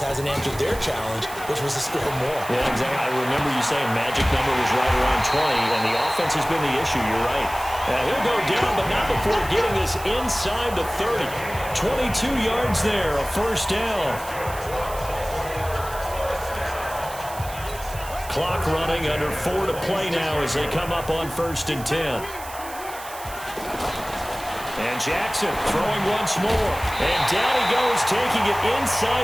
hasn't answered their challenge, which was to score more. Yeah, exactly. I remember you saying magic number was right around 20, and the offense has been the issue. You're right. He'll go down, but not before getting this inside the 30. 22 yards there, a first down. Clock running, under 4 to play now as they come up on first and 10. And Jackson throwing once more. And down he goes, taking it inside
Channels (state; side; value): noise; right; hiss, 14 dB below the sound